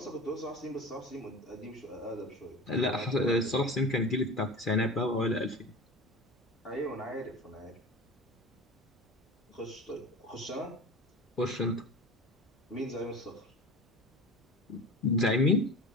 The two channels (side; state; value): both; normal; correlation 0.33